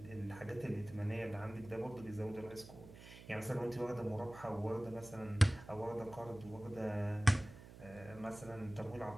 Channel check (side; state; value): right; noise; hum, 16 dB below the sound